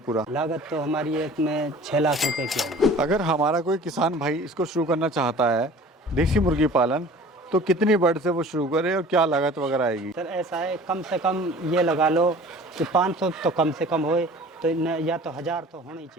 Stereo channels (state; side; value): normal; both; correlation 0.45